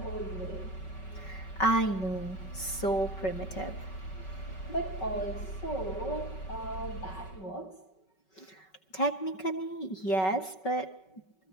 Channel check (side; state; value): right; late; 5.3 ms